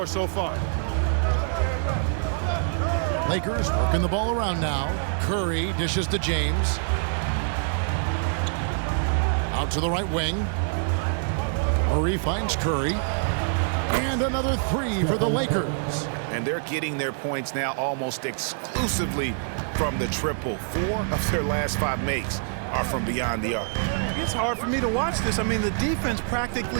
so far. Lakers working the ball around now. Curry dishes to James. Out to the right wing. Murray finds Curry. And another 3 for the Lakers. And they're getting their points now almost exclusively from the triple. 4 of their last 5 makes are from beyond the arc. It's hard for me to watch this. I mean, the defense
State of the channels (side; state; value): left; silent; digital silence